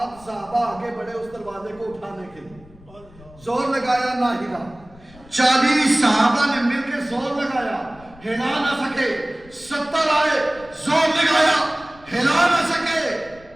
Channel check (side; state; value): left; noise; rumble, 23 dB below the sound